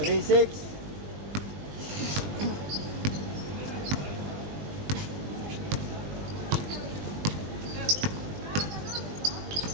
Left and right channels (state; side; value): late; left; 20 ms